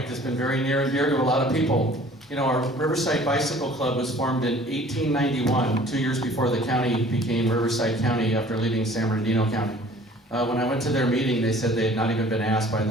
that's been very near and dear to a lot of people. You know, our Riverside Bicycle Club was formed in 1891, 2 years before the county became Riverside County after leaving San Bernardino County. When I went to their meeting, they said they had not even been asked by the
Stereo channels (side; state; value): both; normal; correlation 0.51